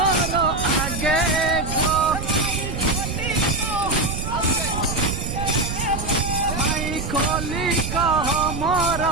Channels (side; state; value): right; noise; rumble, 5 dB below the sound